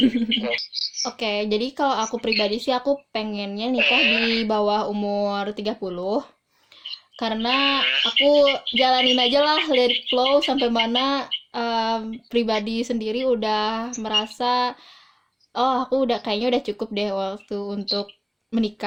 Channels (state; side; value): identical; both; correlation 1.00